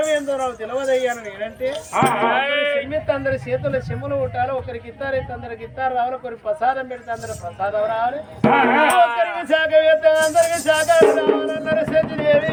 నాకు తెలియదయ్యాను నేనంటే చెమ్మెత్తి అందరి చేతుల్లో చెమ్ములు ఉంటారు. ఒకరికి ఇస్తారైతే అందరికి ఇస్తారు రావాలి, ఒకరికి ప్రసాదం పెడితే అందరు ప్రసాదం రావాలి, ఒకరికి శాఖ వేస్తే అందరికి శాఖ రావాలన్నారు.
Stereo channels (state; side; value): identical; both; correlation 1.00